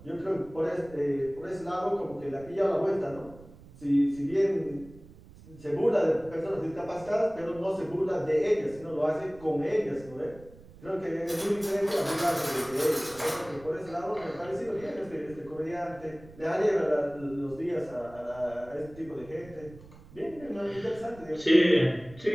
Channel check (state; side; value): noise; right; rumble, 20 dB below the sound